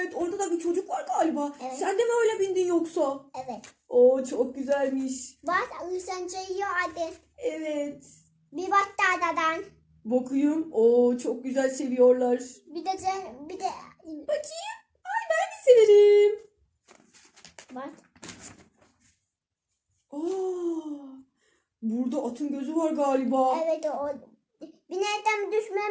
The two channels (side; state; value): both; identical; correlation 1.00